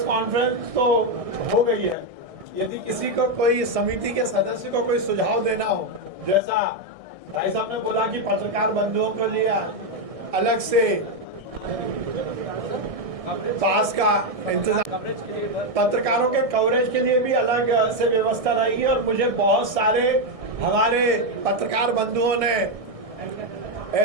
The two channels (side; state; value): left; late; 1.6 ms